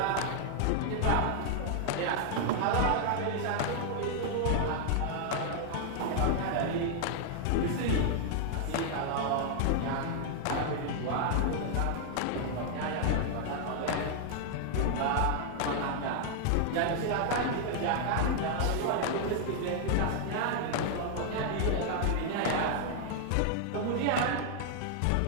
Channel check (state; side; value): different; both; correlation 0.00